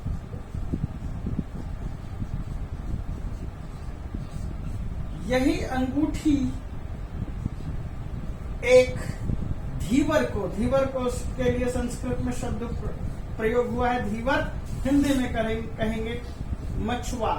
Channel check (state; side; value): identical; both; correlation 1.00